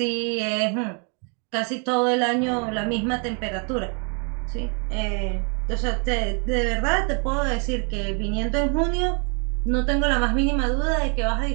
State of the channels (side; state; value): left; quieter; 38.0 dB